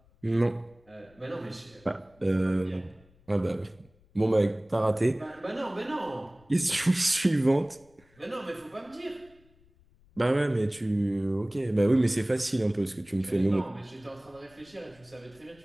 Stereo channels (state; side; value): noise; left; rumble, 30 dB below the sound